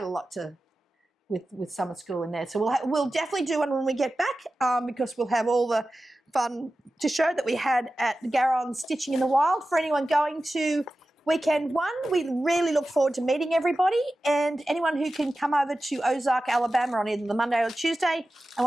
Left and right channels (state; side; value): normal; both; correlation 0.94